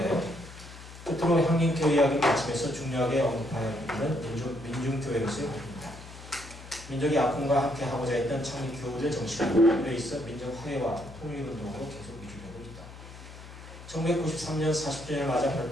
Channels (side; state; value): left; noise; hum, 16 dB below the sound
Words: 끝으로 향림교회 이야기 마치면서 중요하게 언급하여야 하는 민중교회로서의 활동입니다. 민족이 아픔과 함께 하고자 했던 창립 교우들의 정신은 오래 있어 민족 화해와 통일운동으로 계속 이루어지고 있다. 1993년 40주년을 맞아